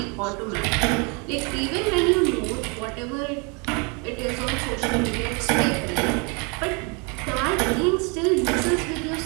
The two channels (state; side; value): quieter; left; 32.5 dB